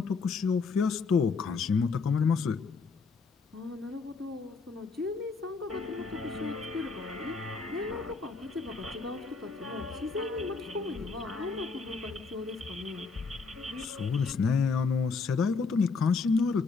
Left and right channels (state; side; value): quieter; right; 4.7 dB